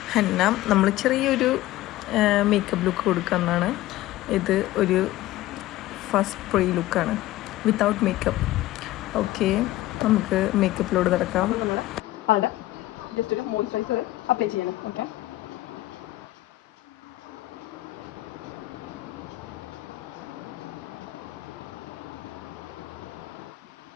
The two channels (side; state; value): right; quieter; 16.3 dB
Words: ഹന്ന. നമ്മൾ ചെറിയൊരു മേക്കപ്പ് ലുക്ക് കൊടുക്കുന്നതാണ്. ഇത് ഒരു ഫസ്റ്റ് പ്രീ ലുക്കാണ്, വിത്തൗട്ട് മേക്കപ്പ്. ഓക്കെ, നമുക്ക് മേക്കപ്പിലോട് നടക്കാം. ജസ്റ്റ് ഒരു മോയ്സ്ചറൈസർ അപ്ലൈ ചെയ്യണം. ഓക്കെ,